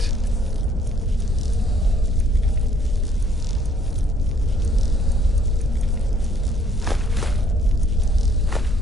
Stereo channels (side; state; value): both; normal; correlation 0.63